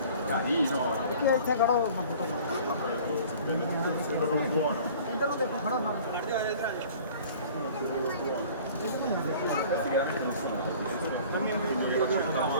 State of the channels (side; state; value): both; inverted; correlation -0.47